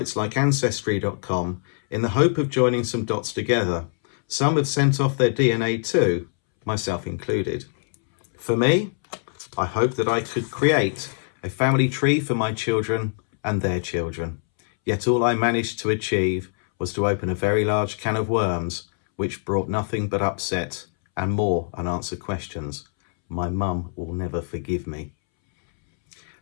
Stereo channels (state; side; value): silent; right; 63 dB below the other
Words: like Ancestry.com in the hope of joining some dots together. Some have sent off their DNA too, myself included. For me, I hope that I could create a family tree for my children and their children. Yet all I managed to achieve was to open a very large can of worms, which brought nothing but upset and more unanswered questions. My mum will never forgive me.